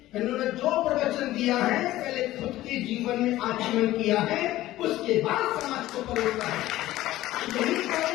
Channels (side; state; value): right; quieter; 15.6 dB